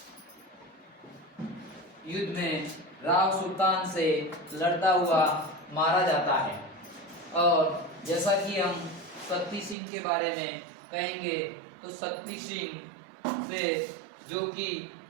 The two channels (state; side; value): drops out; left; at 9.8 s